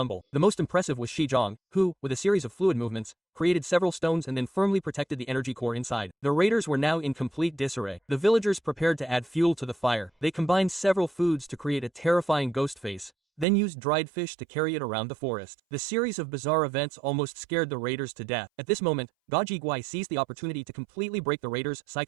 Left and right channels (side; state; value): left; drops out; at 13.5 s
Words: The most impressive was Shi Zhang, who, with a series of fluid movements, created several stones and then firmly protected the energy core inside. The raiders were now in complete disarray. The villagers prepared to add fuel to the fire. They combined several foods to create a terrifying ghost face, then used dried fish to carry it around the forest. The series of bizarre events almost scared the raiders to death. At this moment, Ga Ji Guai seized the opportunity to completely break the raiders'